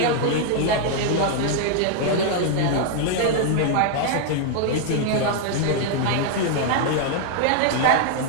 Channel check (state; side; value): different; both; correlation 0.00